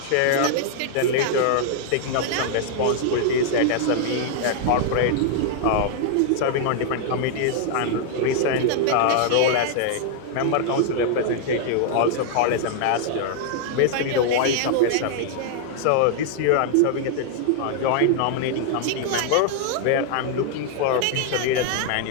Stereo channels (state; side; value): different; both; correlation -0.01